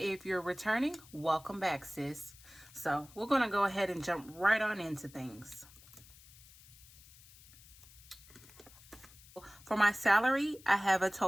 you're returning, welcome back, sis. So we're going to go ahead and jump right on into things. For my salary, I have a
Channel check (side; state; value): left; noise; hiss, 22 dB below the sound